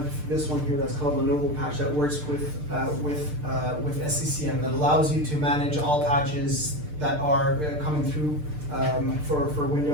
this one here that's called Lenovo Patch that works with SCCM that allows you to manage all patches that are coming through for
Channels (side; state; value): left; late; 6.7 ms